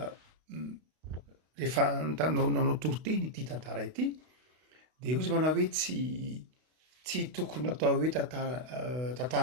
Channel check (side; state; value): left; late; 32 ms